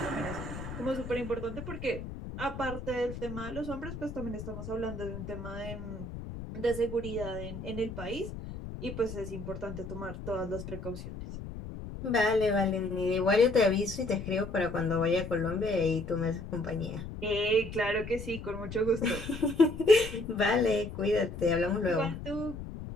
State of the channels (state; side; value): noise; left; rumble, 9 dB below the sound